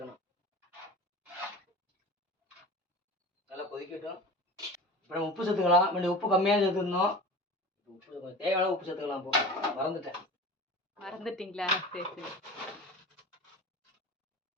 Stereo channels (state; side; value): normal; both; correlation 0.35